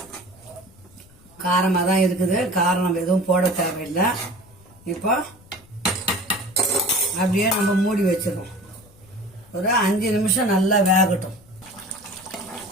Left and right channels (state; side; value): noise; left; rumble, 26 dB below the sound